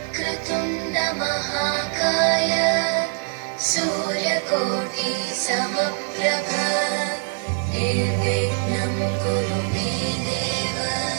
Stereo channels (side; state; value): left; silent; 63 dB below the other